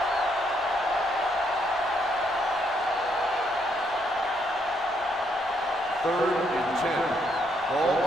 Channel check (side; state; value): both; normal; correlation 0.73